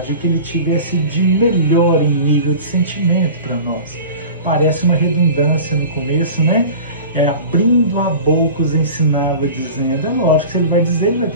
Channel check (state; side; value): inverted; both; correlation -0.37